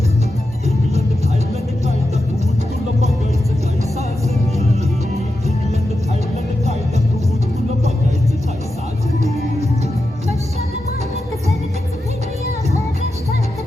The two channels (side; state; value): both; normal; correlation 0.89